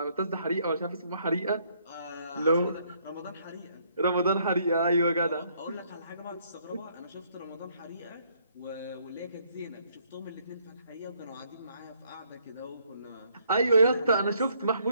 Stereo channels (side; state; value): both; inverted; correlation -0.68